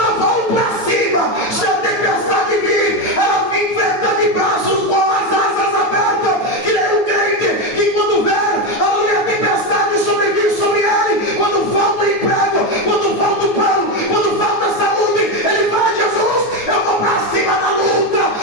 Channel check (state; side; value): late; right; 9.2 ms